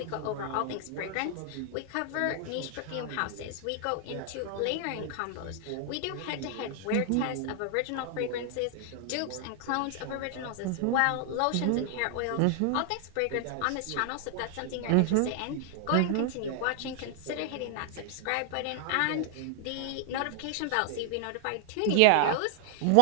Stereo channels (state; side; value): different; both; correlation 0.00